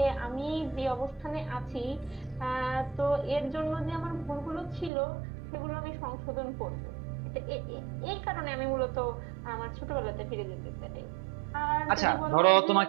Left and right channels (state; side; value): drops out; left; at 4.9 s